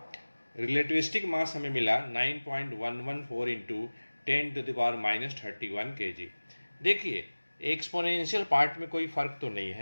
रिलेटिविस्टिक मास हमें मिला 9.114 इंटू 10⁻³ kg। देखिए एक्सपोनेंशियल पार्ट में कोई फ़र्क तो नहीं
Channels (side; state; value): both; inverted; correlation -1.00